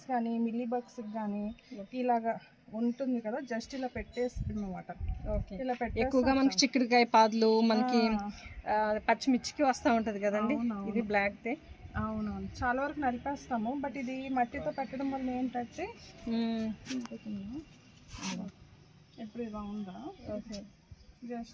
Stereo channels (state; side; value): identical; both; correlation 1.00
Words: కానీ మిల్లీ బగ్స్ కానీ ఇలాగా ఉంటుంది కదా, జస్ట్ ఇలా పెట్టేసుకున్నమాట. ఇలా పెట్టే ఎక్కువగా మనకి చిక్కుడుకాయ పాదులు, మనకి పచ్చిమిర్చికి వస్తూ ఉంటది కదండి, ఇది బ్లాక్ దే. అవునవును, చాలా వరకు నలిపేస్తాము. బట్ ఇది మట్టితో పెట్టడం వల్ల ఏంటంటే ఎప్పుడు ఇలా ఉందా,